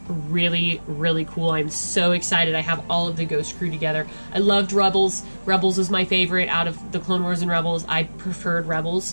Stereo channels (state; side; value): inverted; both; correlation -1.00